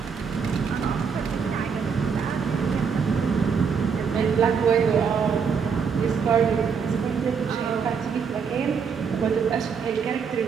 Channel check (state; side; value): quieter; left; 6.2 dB